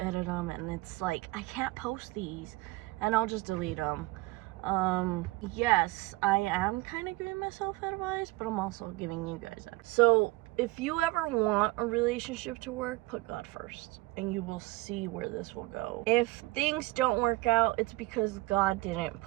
them, and it's like, I can't post these, and I'll just delete them. Yes, I am kind of giving myself advice, but I'm also giving you guys advice. So if you ever want a relationship to work, put God first, and you will see where this will go. If things don't work out, it's because God didn't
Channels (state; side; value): quieter; left; 20.8 dB